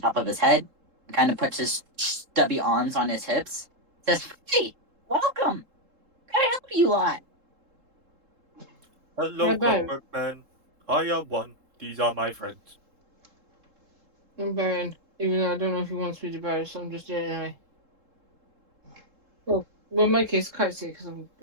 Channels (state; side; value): late; left; 3.7 ms